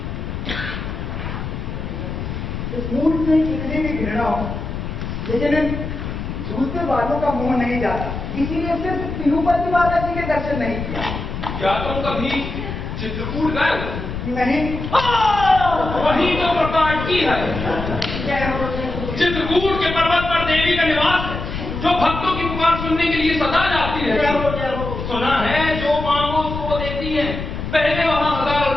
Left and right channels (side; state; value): left; noise; rumble, 6 dB below the sound